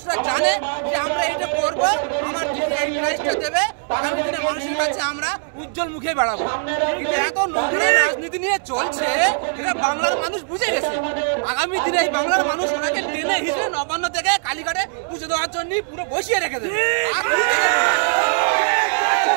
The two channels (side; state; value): left; silent; 65 dB below the other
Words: জানে যে আমরা এটা করবো, আমার প্রাইসটা দেবে, আগামী দিনে মানুষের কাছে আমরা উজ্জ্বল মুখে বেড়াবো। এত নগ্ন রাজনীতি নিয়ে চলছে, এটা বাংলার মানুষ বুঝে গেছে। আগামী দিনে বাংলার মানুষ ওনাকে টেনে হিসেবে নবান্ন থেকে কালীঘাটে পুজো দেওয়ার জন্য পুরো বসিয়ে রেখে দেবে।